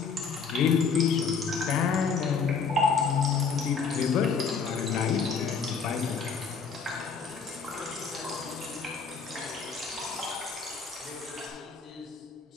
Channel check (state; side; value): quieter; right; 5.6 dB